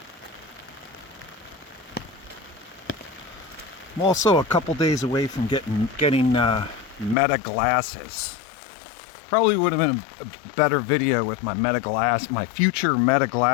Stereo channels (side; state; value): right; drops out; at 7.2 s